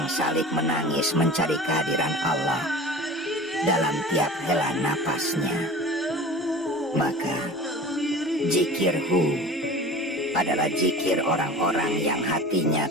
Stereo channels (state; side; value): normal; both; correlation 0.38